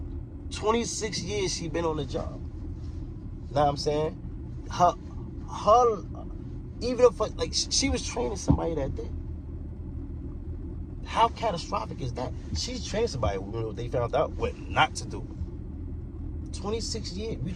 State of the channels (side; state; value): both; identical; correlation 1.00